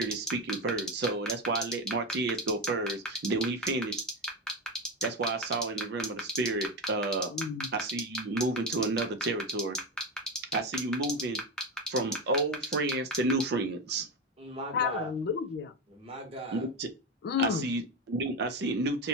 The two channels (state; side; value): normal; both; correlation 0.16